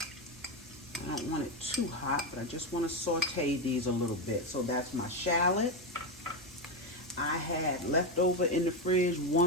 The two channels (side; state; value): both; normal; correlation 0.10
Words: I don't want it too hot, but I just want to saute these a little bit. So that's my shallot. I had left over in the fridge